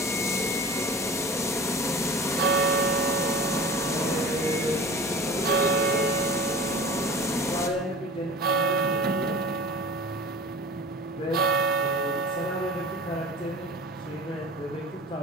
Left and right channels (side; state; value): both; normal; correlation 0.37